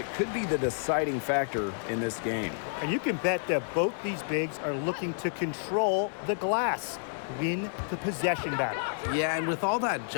could be the deciding factor in this game. And you can bet that both these bigs are looking to control the glass, win the possession battle. Yeah, and with all that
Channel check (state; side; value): silent; right; 58 dB below the other